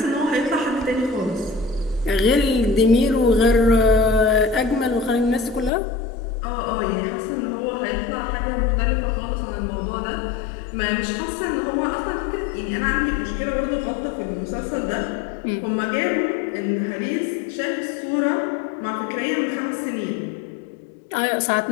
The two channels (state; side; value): drops out; right; at 5.7 s